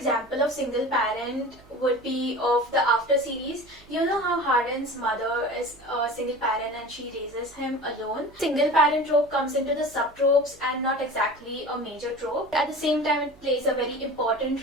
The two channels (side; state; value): right; noise; hum, 26 dB below the sound